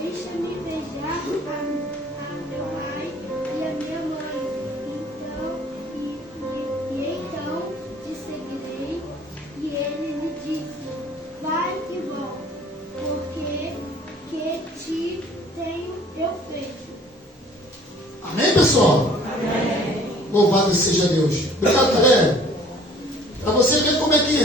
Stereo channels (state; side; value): normal; both; correlation 0.53